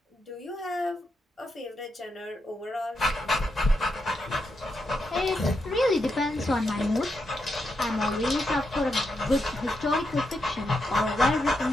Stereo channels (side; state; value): both; normal; correlation 0.83